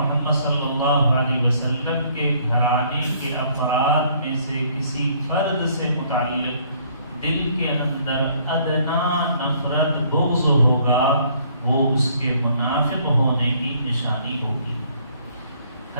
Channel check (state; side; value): inverted; both; correlation -0.62